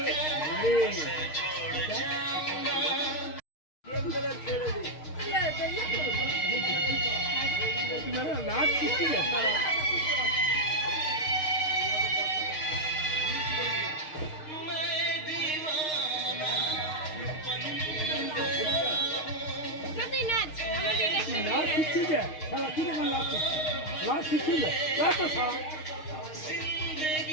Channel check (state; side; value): late; right; 6.5 ms